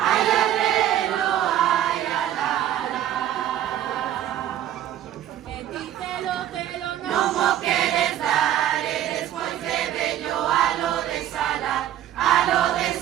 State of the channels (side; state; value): left; quieter; 11.6 dB